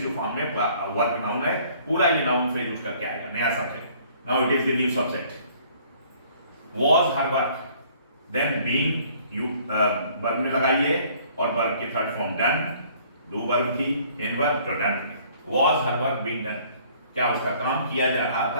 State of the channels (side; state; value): both; inverted; correlation -0.57